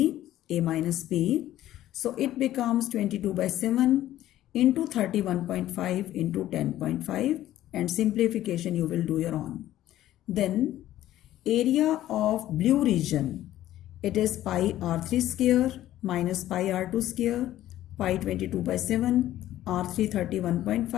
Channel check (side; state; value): right; quieter; 13.6 dB